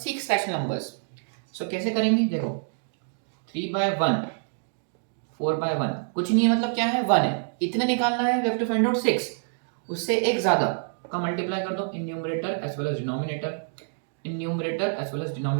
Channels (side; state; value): left; silent; digital silence